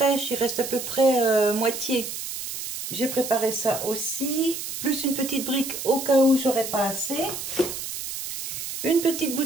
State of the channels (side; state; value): right; noise; hiss, 7 dB below the sound